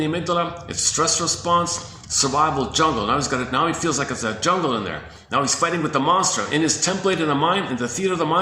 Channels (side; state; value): both; identical; correlation 1.00